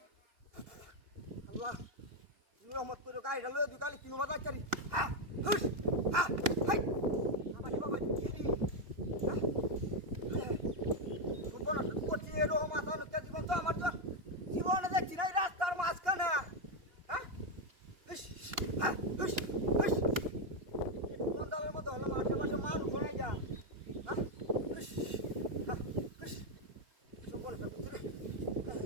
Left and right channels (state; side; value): late; left; 2.9 ms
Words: আল্লাহ রহমত করে গাড়িটা লয়ে দুই কালি কিনো বাজার চারি হ্যাঁ হুস হ্যাঁ হাই বাবা কি দি জীবন করছি এরকম মাথা নষ্ট জীবন তো আমার জীবনে দেখছি না রাস্তার মাঝখানে হ্যাঁ হ্যাঁ বন্দালের মতো হলো আশেপাশে মানুষ শোনাই যা হ্যাঁ